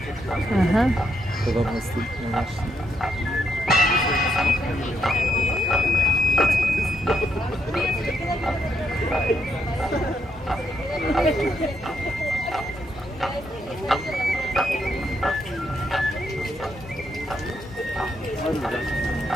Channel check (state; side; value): normal; both; correlation 0.78